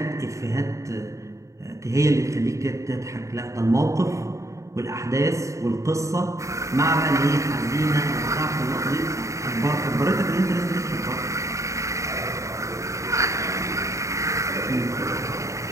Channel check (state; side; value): late; left; 0.15 ms